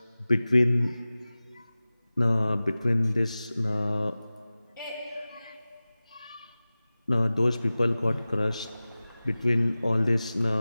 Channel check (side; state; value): both; inverted; correlation -0.97